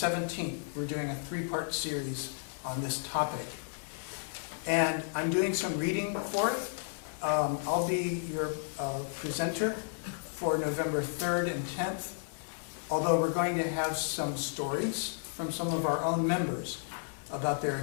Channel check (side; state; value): right; silent; digital silence